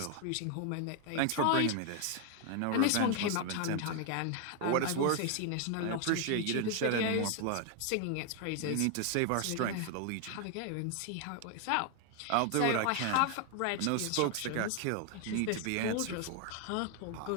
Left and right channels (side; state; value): both; different; correlation 0.00